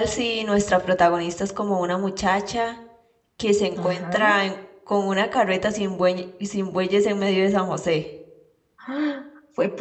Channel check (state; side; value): identical; both; correlation 1.00